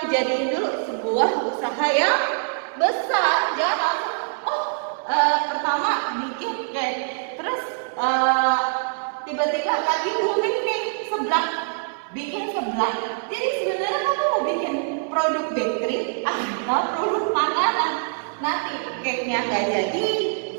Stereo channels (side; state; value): left; silent; digital silence